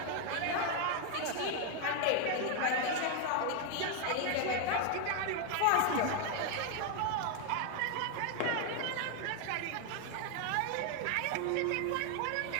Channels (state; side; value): different; both; correlation 0.01